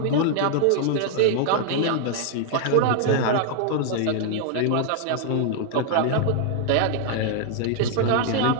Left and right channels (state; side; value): different; both; correlation 0.00